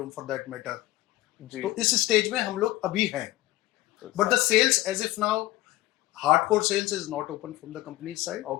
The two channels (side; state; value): right; quieter; 17.6 dB